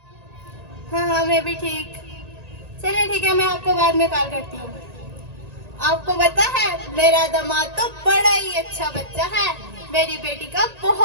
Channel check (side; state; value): left; late; 1.8 ms